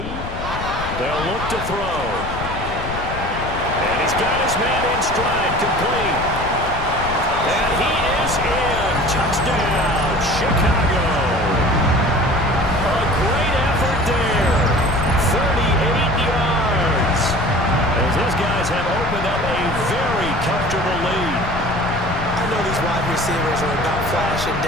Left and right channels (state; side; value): noise; left; rumble, 8 dB below the sound